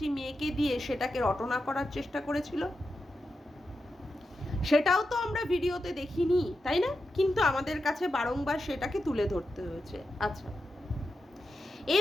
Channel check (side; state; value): both; normal; correlation 0.89